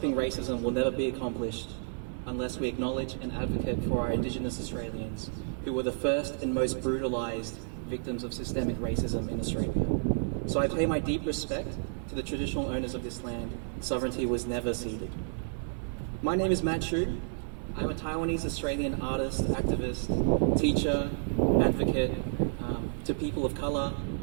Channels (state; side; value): silent; left; digital silence